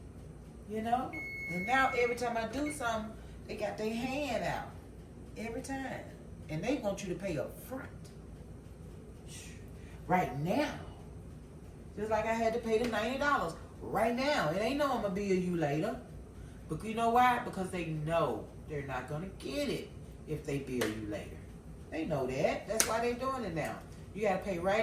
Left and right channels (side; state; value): both; identical; correlation 1.00